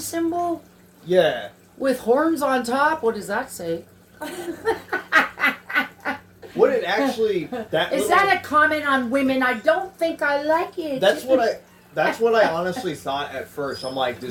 Yeah. With horns on top. What does that say? What it actually is that a comment on women? I don't think I like it. That's That's what I honestly thought at first. I'm like,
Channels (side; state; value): both; identical; correlation 1.00